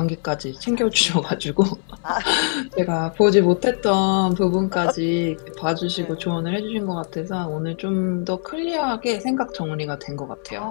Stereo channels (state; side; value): silent; right; 64 dB below the other